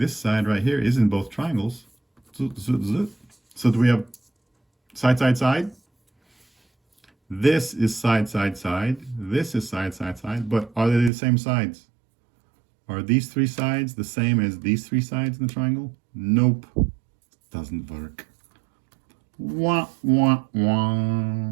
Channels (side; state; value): left; drops out; at 11.1 s